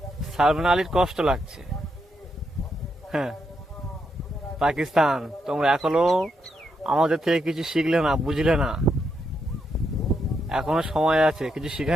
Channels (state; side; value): normal; both; correlation 0.81